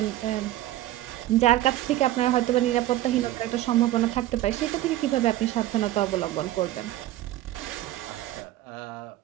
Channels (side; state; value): left; quieter; 14.7 dB